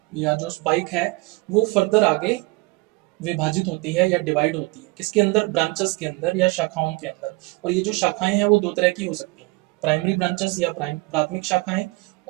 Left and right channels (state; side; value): quieter; left; 24.5 dB